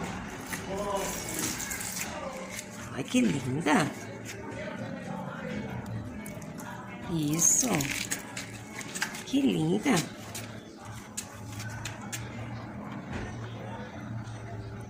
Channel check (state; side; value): identical; both; correlation 1.00